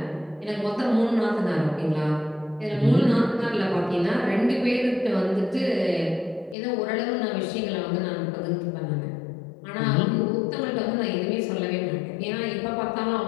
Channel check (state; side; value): drops out; right; at 6.6 s